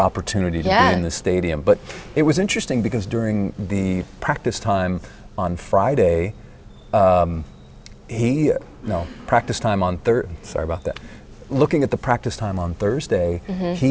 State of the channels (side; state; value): both; identical; correlation 1.00